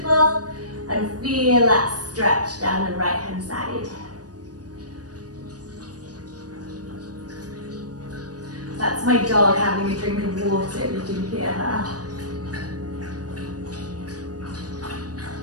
and feel that stretch down the right hand side. That's my dog having a drink of water, if you can hear her.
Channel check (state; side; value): late; left; 0.68 ms